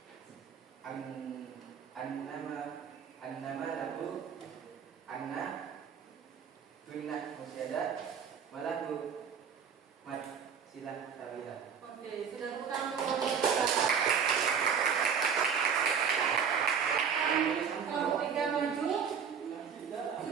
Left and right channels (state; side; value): quieter; left; 7.1 dB